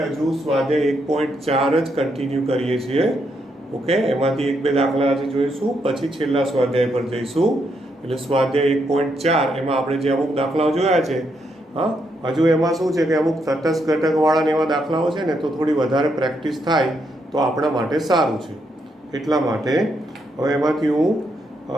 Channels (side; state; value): both; normal; correlation 0.78